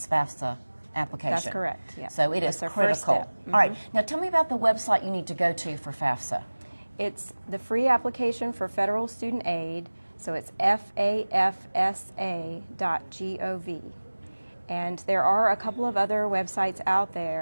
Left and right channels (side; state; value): both; inverted; correlation -1.00